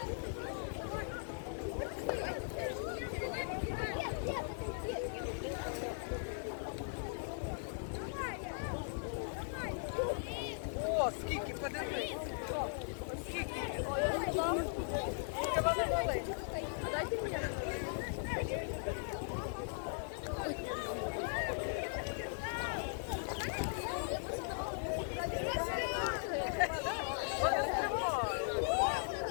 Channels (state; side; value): silent; right; digital silence